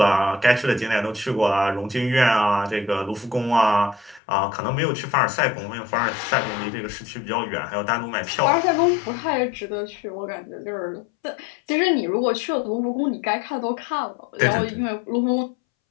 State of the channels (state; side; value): drops out; right; at 4.2 s